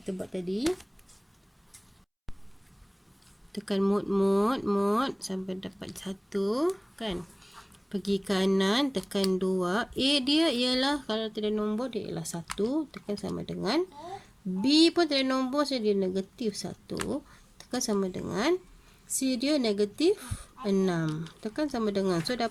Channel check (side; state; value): both; identical; correlation 1.00